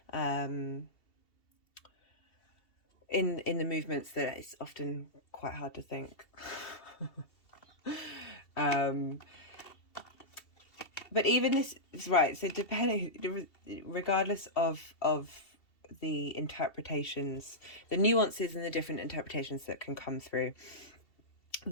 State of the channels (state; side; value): late; right; 2.7 ms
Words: in the movements that it's often quite hard to think. But even this, right, so depending, regardless of the interpretations, the nuances and the different interpretations that can come through,